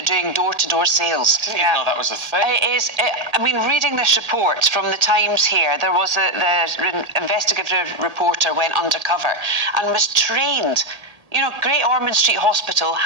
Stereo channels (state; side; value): late; left; 1.8 ms